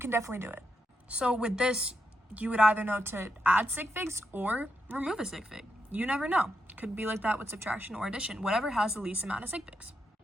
definitely do it. So with this, you would either know to add sig figs or remove a sig fig. You never know. Could be like that with subtraction or addition, whatever has the least amount of sig figs.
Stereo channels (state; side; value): normal; both; correlation 0.83